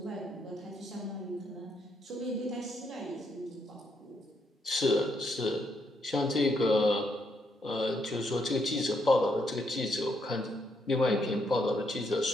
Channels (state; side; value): normal; both; correlation 0.76